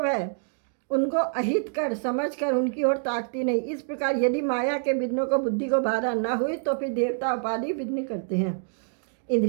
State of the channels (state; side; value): silent; left; digital silence